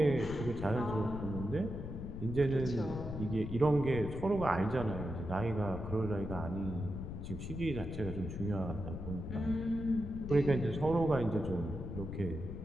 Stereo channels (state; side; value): noise; left; rumble, 7 dB below the sound